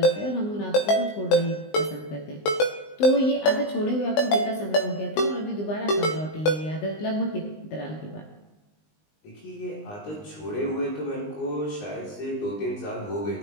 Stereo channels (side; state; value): right; late; 20 ms